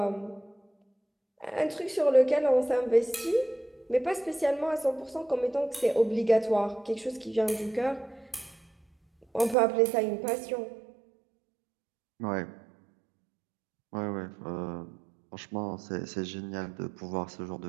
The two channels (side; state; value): left; drops out; at 9.6 s